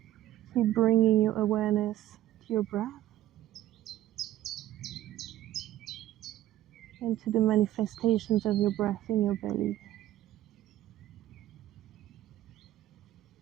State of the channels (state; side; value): quieter; left; 13.7 dB